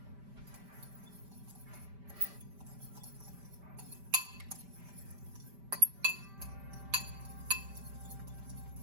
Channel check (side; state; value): left; late; 5.1 ms